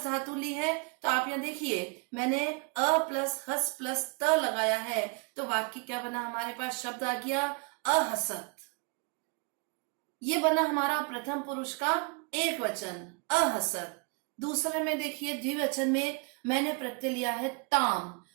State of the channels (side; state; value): left; quieter; 34.3 dB